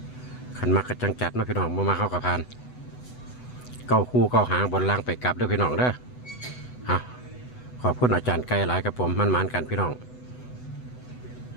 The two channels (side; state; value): right; late; 8.0 ms